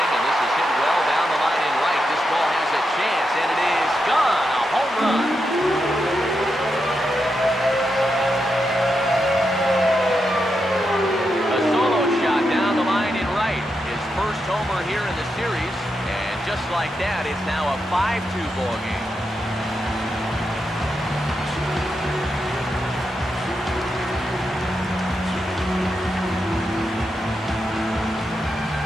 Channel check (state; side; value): normal; both; correlation 0.85